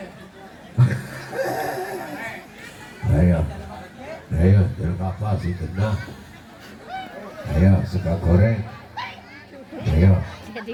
Ayo, jeruk apa sih kena? Ayo, suka goreng. Ayo. Jadi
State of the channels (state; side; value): identical; both; correlation 1.00